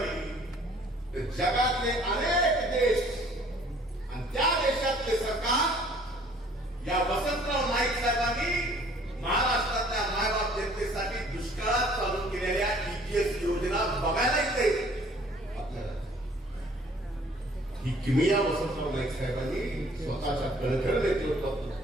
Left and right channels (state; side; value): normal; both; correlation 0.56